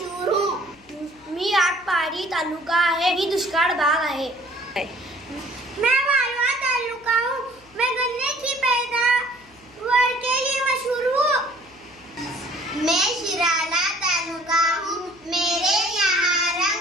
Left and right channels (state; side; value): noise; left; hum, 29 dB below the sound